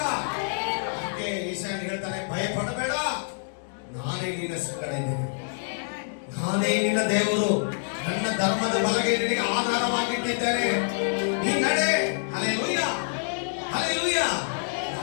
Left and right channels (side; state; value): right; silent; digital silence